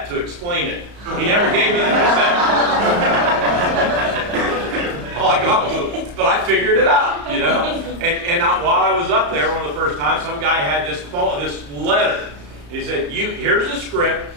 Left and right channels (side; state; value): left; late; 34 ms